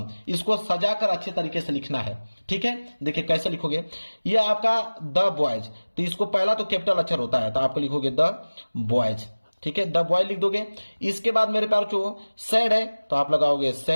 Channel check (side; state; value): both; inverted; correlation -1.00